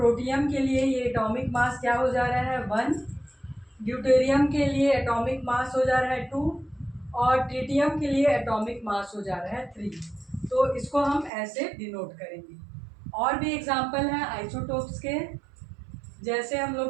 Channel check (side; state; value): left; drops out; at 11.3 s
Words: के लिए ये एटॉमिक मास क्या हो जा रहा है, 1, ड्यूटेरियम के लिए एटॉमिक मास हो जा रहा है 2 और ट्रिटियम के लिए एटॉमिक मास हो जा रहा है 3। तो इसको हम ऐसे डिनोट करेंगे। और भी एग्जाम्पल हैं आइसोटोप्स के, जैसे हम